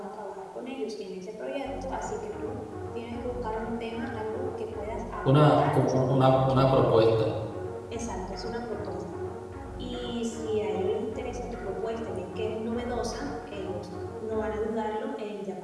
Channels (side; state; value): both; identical; correlation 1.00